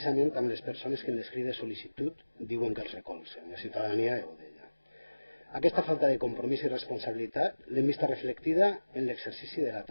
amb les persones que en l'escrit de sol·licitud diuen que els recolzen, la ciutadania de Godella. Aquesta falta de compromís i responsabilitat l'hem vista reflectida en l'exercici de la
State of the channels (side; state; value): both; inverted; correlation -1.00